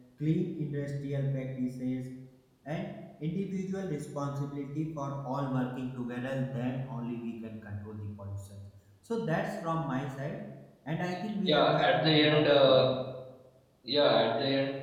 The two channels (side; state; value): both; identical; correlation 1.00